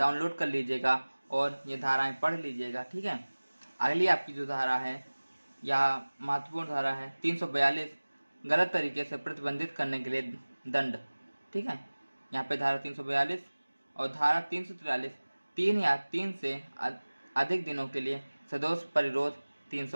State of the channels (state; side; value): inverted; both; correlation -1.00